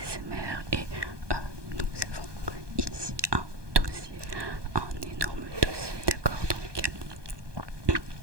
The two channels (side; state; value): left; late; 1.2 ms